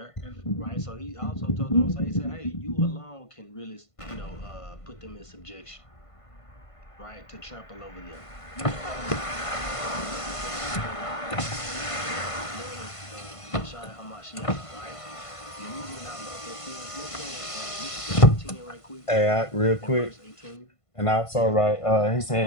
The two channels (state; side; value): late; right; 1.5 ms